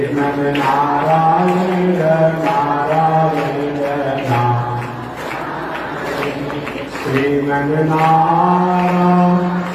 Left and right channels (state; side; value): identical; both; correlation 1.00